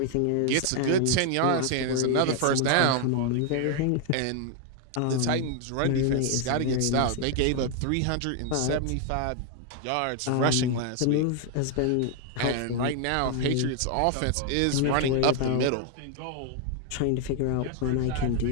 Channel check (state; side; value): different; both; correlation 0.00